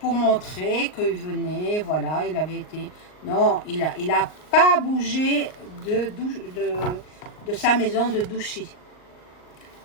montrer qu'il venait, voilà, il avait été... Non, il a pas bougé de sa maison de Douchy.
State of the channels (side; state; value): right; late; 38 ms